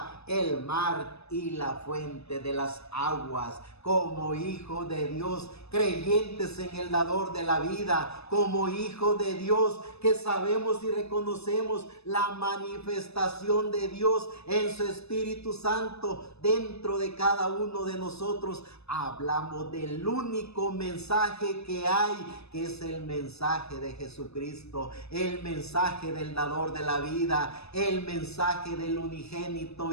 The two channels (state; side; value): late; right; 0.79 ms